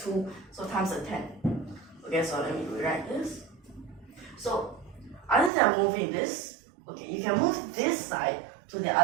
so times a 10. Okay, so let me rewrite this. So other than moving this, okay, you can move this side to the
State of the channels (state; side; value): drops out; left; at 5.5 s